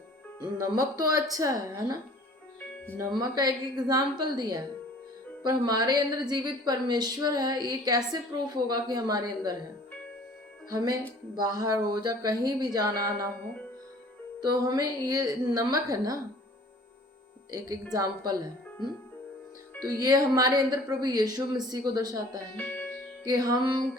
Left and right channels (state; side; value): normal; both; correlation 0.50